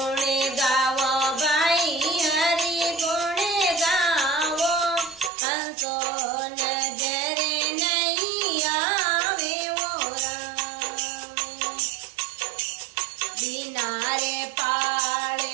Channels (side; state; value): left; drops out; at 5.3 s